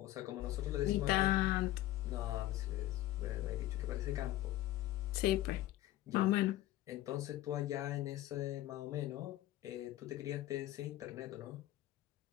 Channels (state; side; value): quieter; right; 15.2 dB